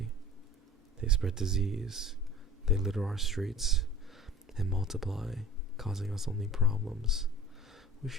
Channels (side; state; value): both; normal; correlation 0.42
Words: They spread disease, they litter our streets, and multiply, causing us only problems. We